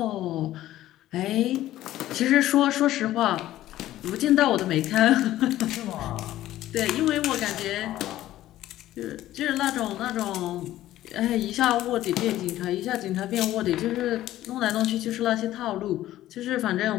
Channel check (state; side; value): quieter; right; 14.2 dB